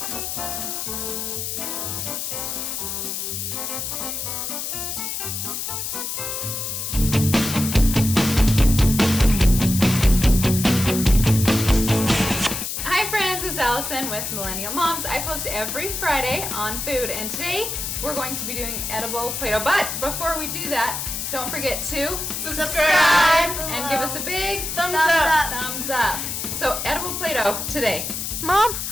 Allison with Millennial Moms. I post every Friday on food, and today we're going to be doing edible Play-Doh. But before we do that, don't forget to subscribe and give us a big thumbs up. So edible Play-Doh today. Mom,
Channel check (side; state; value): left; noise; hiss, 4 dB below the sound